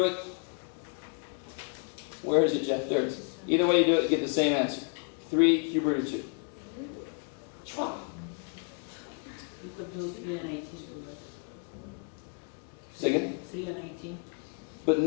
it, where is it, Jeff? There it is. Either way you do it, you get the same answer. 3 cube root of 2. Chua. You could do 3 and 18 too, right? Say again? 3 and 18. But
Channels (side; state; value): right; quieter; 39.9 dB